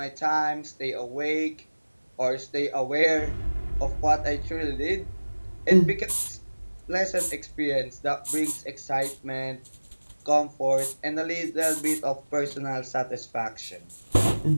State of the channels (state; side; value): inverted; both; correlation -1.00